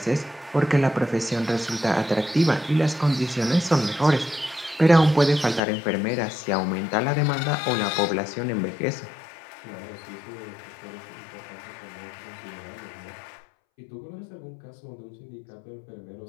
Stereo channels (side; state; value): right; drops out; at 5.6 s